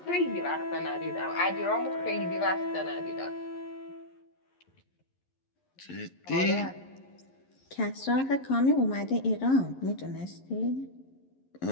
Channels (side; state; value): right; late; 11 ms